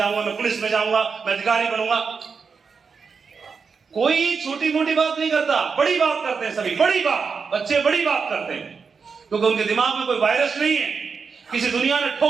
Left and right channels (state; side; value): quieter; left; 5.5 dB